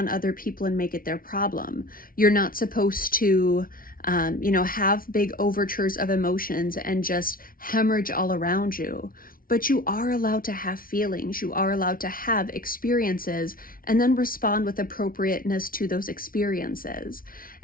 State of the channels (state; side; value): late; right; 0.42 ms